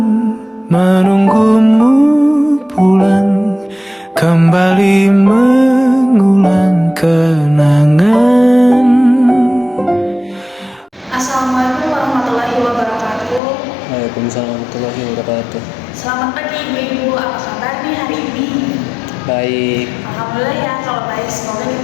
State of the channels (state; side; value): drops out; right; at 13.4 s